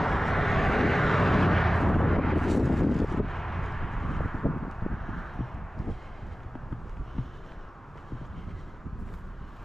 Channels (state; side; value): normal; both; correlation 0.97